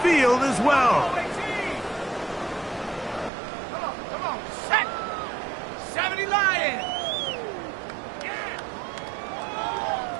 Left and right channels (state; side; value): drops out; left; at 3.3 s